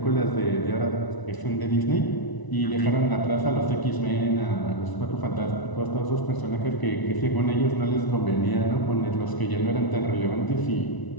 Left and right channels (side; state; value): right; late; 1.0 ms